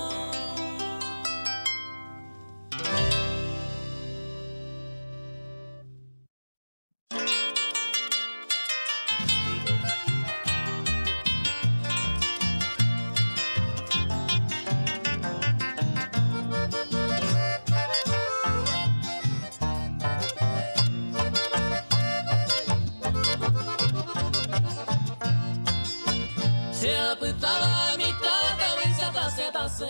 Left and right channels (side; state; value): both; inverted; correlation -1.00